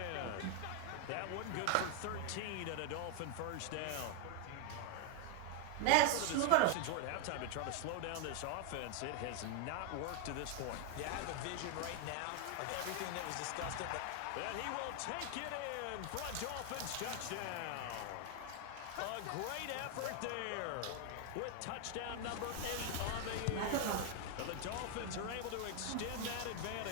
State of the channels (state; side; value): different; both; correlation 0.00